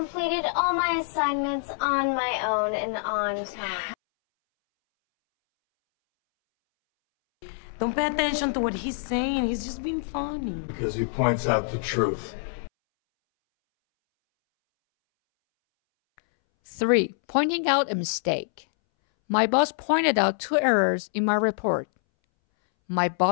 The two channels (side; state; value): right; silent; 61 dB below the other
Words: all my assignments on my own and on time. Don't pay attention to what he's saying. He's just being funny. Because he points out the truth. 3. Pointing out a mistake. My boss pointed out 2 errors in my report. My